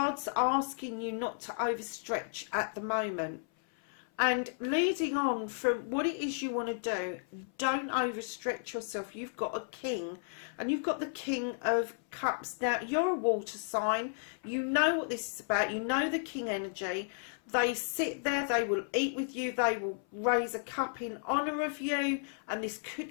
asking you not to overstretch at the moment. And leading on from what it is you want to do, don't overstretch yourself. You've got a king, and you've got the King of Cups. Now, you're a water sign. You know what this is about. You know the king energy. They sit there. They will eat with you. They will raise a cup in honour of you. And this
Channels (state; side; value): silent; right; 55 dB below the other